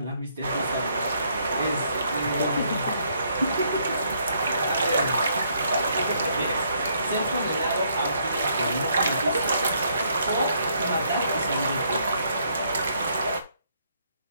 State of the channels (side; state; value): both; inverted; correlation -0.70